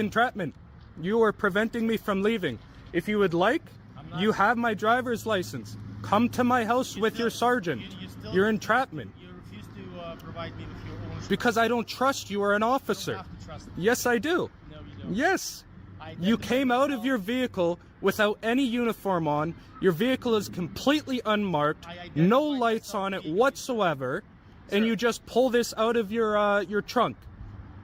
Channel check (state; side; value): identical; both; correlation 1.00